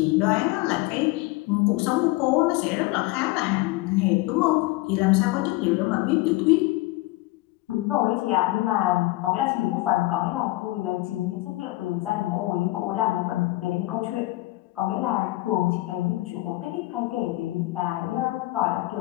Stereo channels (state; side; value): quieter; right; 19.9 dB